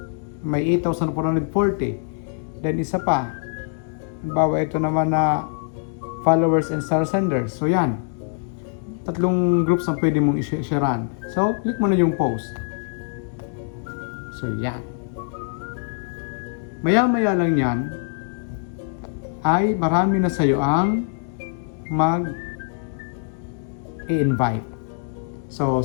May 8,440. Then isa pa. Halimbawa ito naman na followers and star senders. So yan. 3 groups ang pwede mong i-sharean. So, click mo na yung post. So, yan. Maya-maya lang yan, ay marami na sa'yo ang mag-i-invite. So,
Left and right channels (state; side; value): silent; right; 63 dB below the other